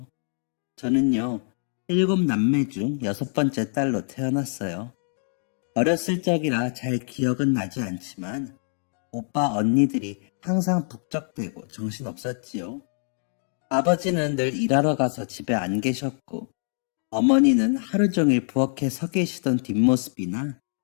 저는요, 7남매 중 6번째 딸로 태어났어요. 어렸을 적이라 잘 기억은 나지 않지만 오빠 언니들이 항상 북적대고 정신없었지요. 아버지는 늘 일하러 가서 집에 안 계셨고 어머니는 하루 종일 부엌에 서 계시던 뒷모습이나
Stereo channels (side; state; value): right; silent; 62 dB below the other